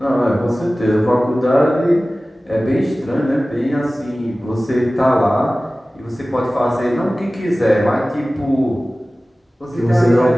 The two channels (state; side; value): normal; both; correlation 0.97